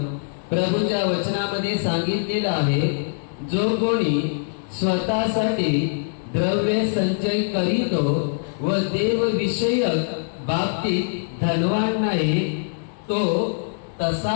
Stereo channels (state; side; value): silent; right; digital silence